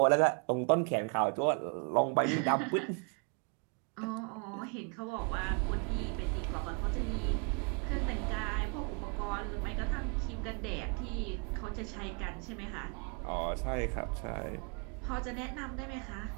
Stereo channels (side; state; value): left; quieter; 37.2 dB